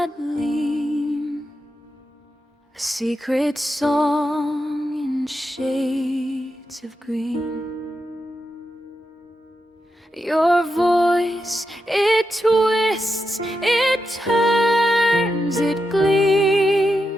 lean, a secret song in shades of green. Your voice, it twists, it turns, it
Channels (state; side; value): normal; both; correlation 0.87